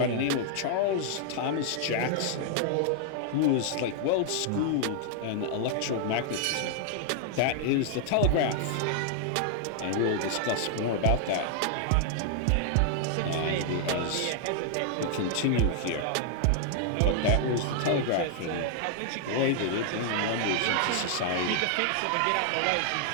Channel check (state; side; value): different; both; correlation 0.00